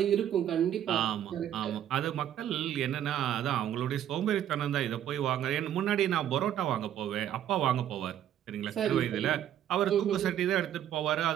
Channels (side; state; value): left; quieter; 10.7 dB